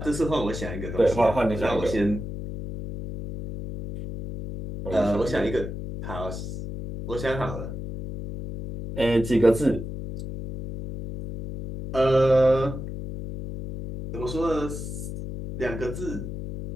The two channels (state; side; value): noise; left; hum, 7 dB below the sound